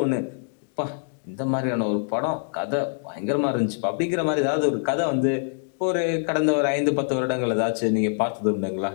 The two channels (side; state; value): right; silent; digital silence